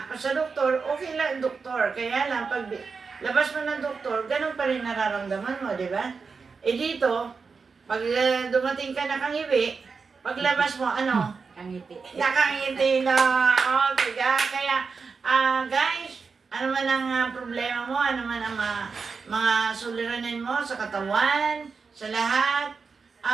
sa doktor, okay lang doktor. Kaya lang, pag labas mo ng doktor, ganun pa rin nararamdaman mo, di ba? Dito, pag dumating ka nakangiwi, paglabas mo, Kangiti. nakangiti na. Okay, kaya, guys, Ano man ang problema mo, ano man ang mga suliranin mo sa katawan, sa lahat,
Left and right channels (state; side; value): quieter; left; 5.0 dB